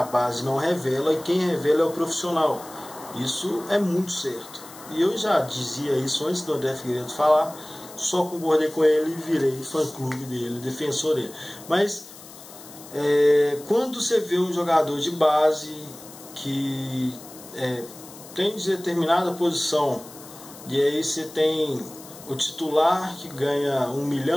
base não revela e quem revela é o profissional. Isso é muito certo. E eu já dizia isso antes do André Figueiredo falar, só concordei com ele e virei fã-clube dele, defensor dele. Mas quando você vê um jogador de base que tem determinada posição, e aí você tem o titular que ganha 1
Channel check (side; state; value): left; noise; hiss, 18 dB below the sound